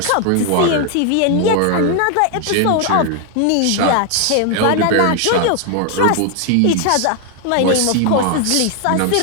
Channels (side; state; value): both; different; correlation 0.00